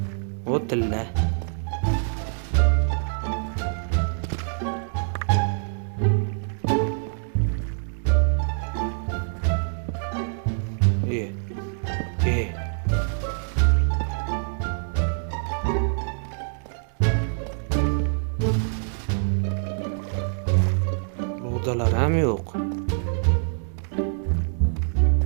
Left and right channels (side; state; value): left; silent; digital silence